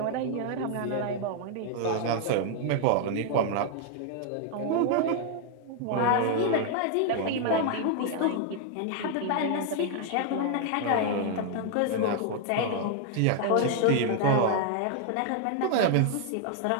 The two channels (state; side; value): different; both; correlation 0.00